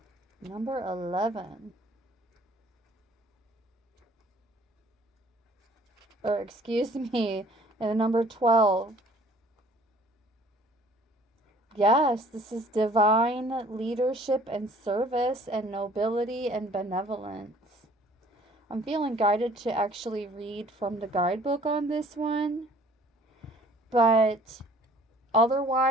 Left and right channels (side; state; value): both; normal; correlation 0.54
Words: Number 11. Or excuse me, and number 12. Yes, this is divine leadership and service and nobility and benevolence. I'm feeling guided to actually read from the guidebook on this one. But